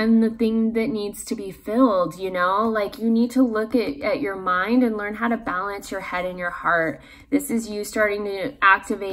the thing that needs to be filled, you know? Like you need to look at your mind and learn how to balance your head and your heart. This is you starting to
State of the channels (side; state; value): both; identical; correlation 1.00